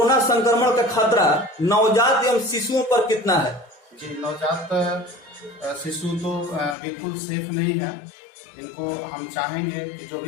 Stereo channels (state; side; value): drops out; right; at 6.8 s